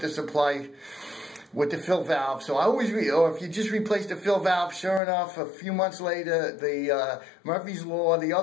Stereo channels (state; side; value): drops out; right; at 5.0 s